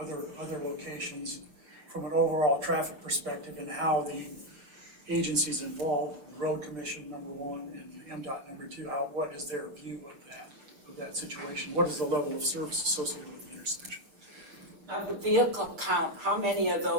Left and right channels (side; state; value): left; late; 6.9 ms